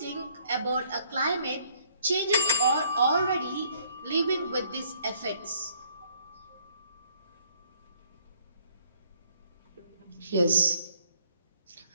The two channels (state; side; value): inverted; both; correlation -0.62